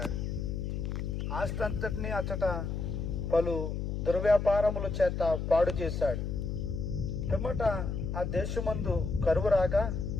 ఆస్తి అంతటినీ అతట పలు దుర్వ్యాపారముల చేత పాడు చేశాడు. పిమ్మట ఆ దేశమందు కరువు రాగా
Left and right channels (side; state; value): left; noise; hum, 3 dB below the sound